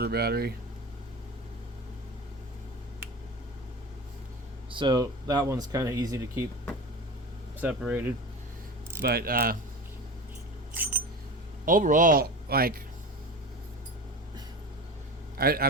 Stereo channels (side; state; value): both; normal; correlation 0.29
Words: battery, so that one's kind of easy to keep separated. But overall, like, I